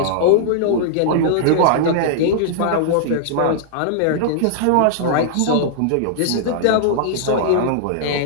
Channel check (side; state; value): both; different; correlation -0.01